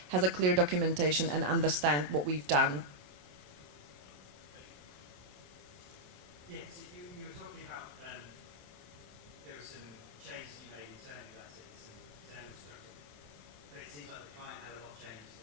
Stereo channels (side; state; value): left; late; 27 ms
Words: has a clear documentation and understand what we've done. Yeah, so you were talking about there were some changes you made internally, that's it, some internal structure. But it seems like the client had a lot of changes